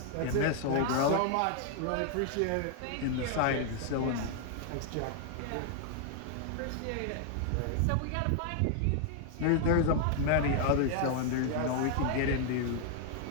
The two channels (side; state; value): both; different; correlation 0.00